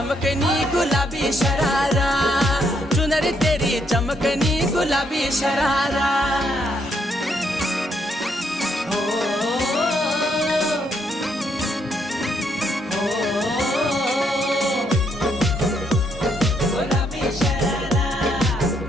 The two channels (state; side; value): normal; both; correlation 0.74